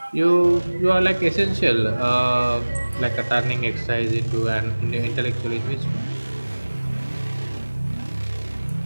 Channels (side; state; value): both; inverted; correlation -1.00